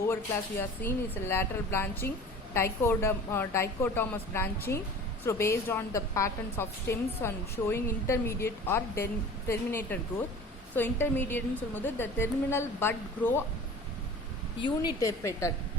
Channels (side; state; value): both; normal; correlation 0.41